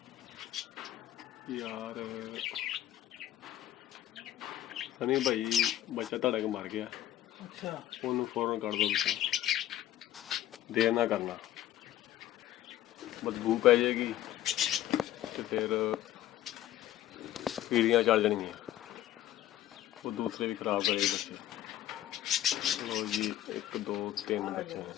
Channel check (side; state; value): right; quieter; 13.1 dB